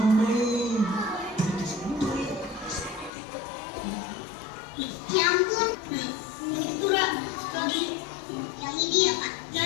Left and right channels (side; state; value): right; drops out; at 3.1 s